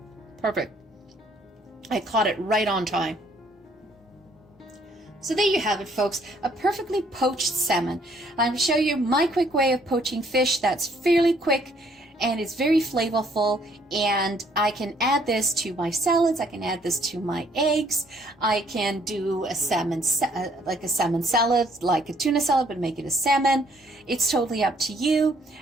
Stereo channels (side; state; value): both; normal; correlation 0.64